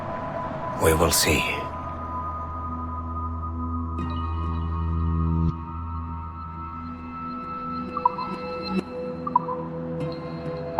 We will see.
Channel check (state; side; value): identical; both; correlation 1.00